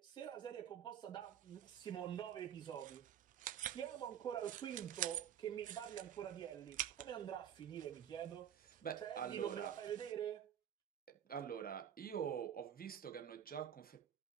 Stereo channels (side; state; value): left; quieter; 9.6 dB